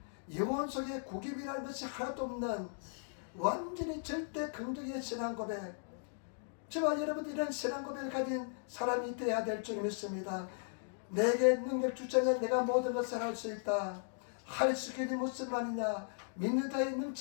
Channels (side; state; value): right; silent; digital silence